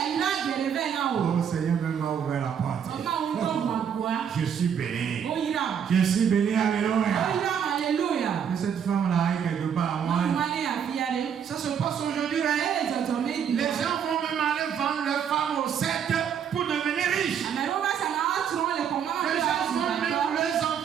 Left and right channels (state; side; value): quieter; left; 8.0 dB